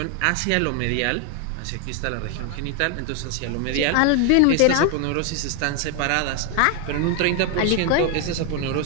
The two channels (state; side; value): different; both; correlation 0.01